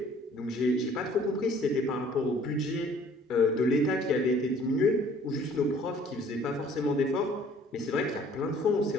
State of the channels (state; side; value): normal; both; correlation 0.55